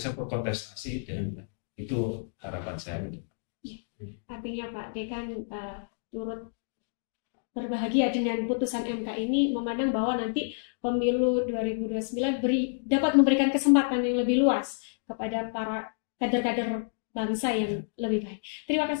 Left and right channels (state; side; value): silent; right; digital silence